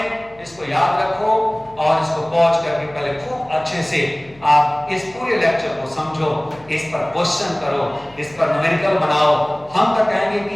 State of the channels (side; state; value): left; noise; hum, 26 dB below the sound